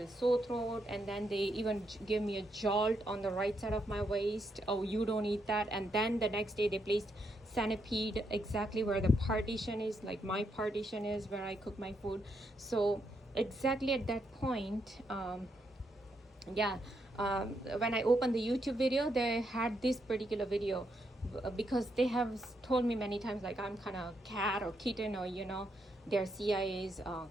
sore throat, and then they even gave me a jolt on the right side of my waist. Oh, you don't eat that. And then the next day they placed centipede exactly where the partition is, like my partition is where I cook my food. So exactly at that point, when I opened the YouTube video, they had this particular video because they have told me many times like I'm kind of cat or kitten, or their CIA's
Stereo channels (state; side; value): normal; both; correlation 0.79